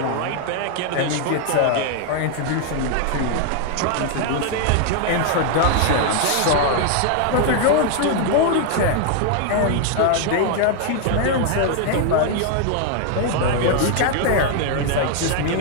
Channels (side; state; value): both; different; correlation 0.00